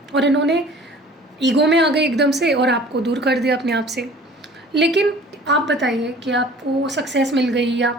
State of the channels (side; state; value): both; normal; correlation 0.48